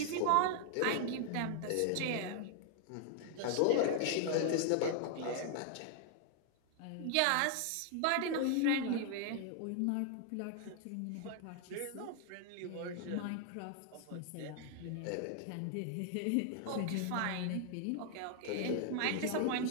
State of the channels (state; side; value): different; both; correlation 0.00